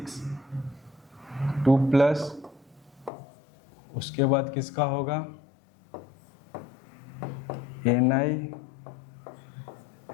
2 प्लस, उसके बाद किसका होगा? Ni,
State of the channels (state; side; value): drops out; right; at 3.1 s